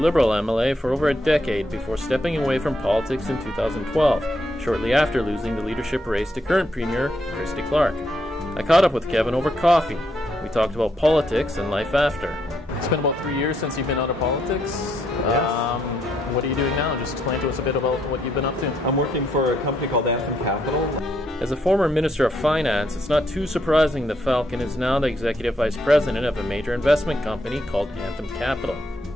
MLA for over a decade before stepping away from politics in 2012, shortly after losing the leadership race to current Premier Christy Clark. I caught up with Kevin over coffee. We talked about politics and life after. It's been about 3 years since you've been out of politics. Yes. What are you doing now? Just explain to us a bit about what you've been up to. I'm working for a company called Anthem Capital. As a former Minister of Finance, it's not too surprising that Falcon is now the Executive Vice President of a major investment company called Anthem Capital.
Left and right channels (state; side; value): normal; both; correlation 0.76